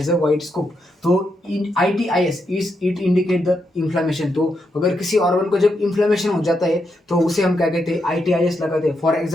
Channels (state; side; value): normal; both; correlation 0.82